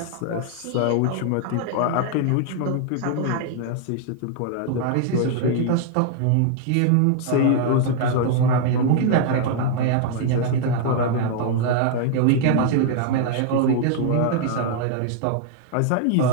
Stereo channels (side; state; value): both; different; correlation -0.01